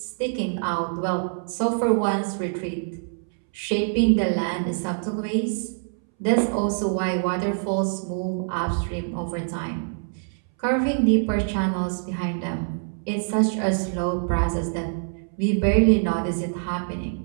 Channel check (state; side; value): silent; left; 62 dB below the other